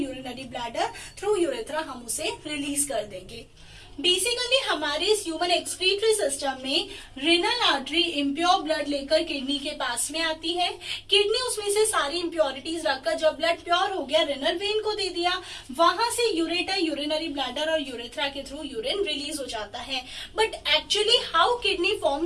bladder through urethra हम उसे रिलीज कर देंगे। बेसिकली हमारे इस ह्यूमन एक्सक्रीटरी सिस्टम में रेनल आर्टरी इम्प्योर ब्लड लेकर किडनी के पास में आती है, किडनी उसमें से सारी इम्प्योरिटीज रखकर जब ब्लड प्योर हो गया रेनल वेन को दे दिया, वहां से यूरेटर, यूरिनरी ब्लैडर और यूरेथ्रा के थ्रू यूरिन रिलीज हो जाता है। But actually how kidney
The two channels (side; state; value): both; identical; correlation 1.00